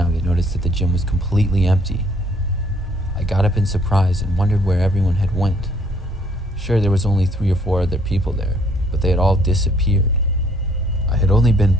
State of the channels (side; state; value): both; normal; correlation 0.64